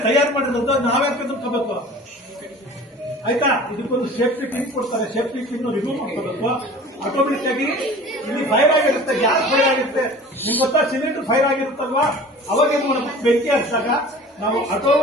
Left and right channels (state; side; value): normal; both; correlation 0.42